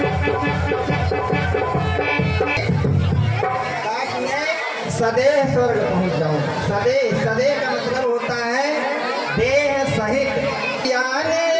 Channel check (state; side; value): identical; both; correlation 1.00